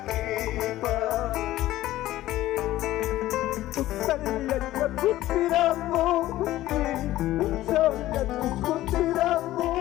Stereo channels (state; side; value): quieter; right; 15.3 dB